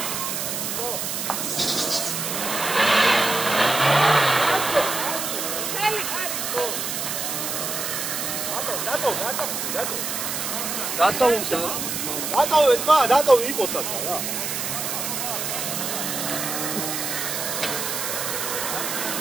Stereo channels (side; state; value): right; noise; hiss, 3 dB below the sound